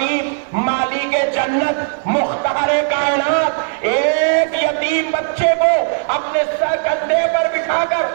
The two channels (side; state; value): left; silent; 56 dB below the other